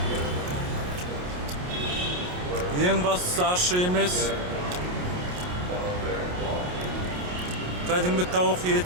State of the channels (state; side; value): late; left; 28 ms